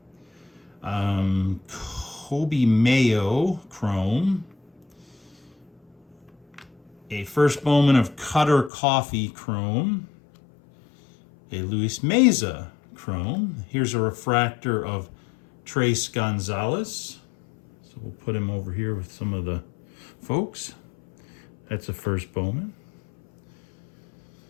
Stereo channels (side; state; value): right; drops out; at 8.7 s